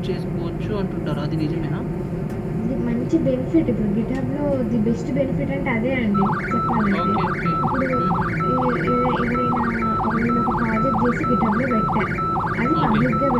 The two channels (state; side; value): identical; both; correlation 1.00